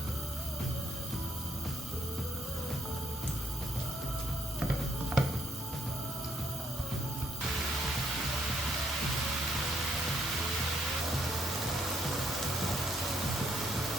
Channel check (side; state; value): both; normal; correlation 0.71